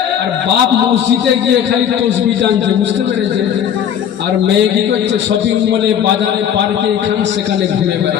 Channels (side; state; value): right; quieter; 9.1 dB